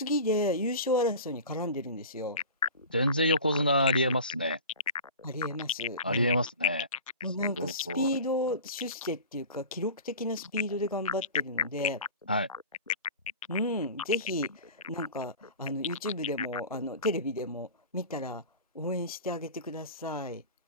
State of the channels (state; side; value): inverted; both; correlation -0.36